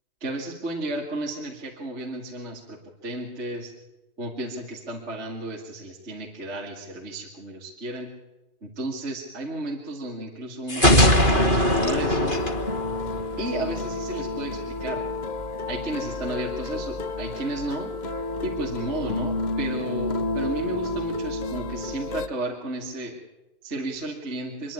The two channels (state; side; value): late; left; 2.5 ms